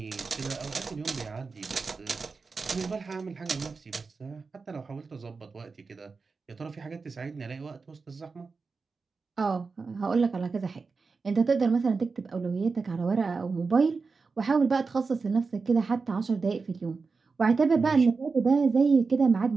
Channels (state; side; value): quieter; left; 4.5 dB